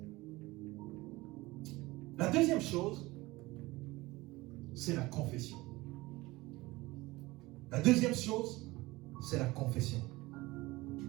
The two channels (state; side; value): quieter; left; 20.5 dB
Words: La deuxième chose, c'est la confession. La deuxième chose, c'est la confession.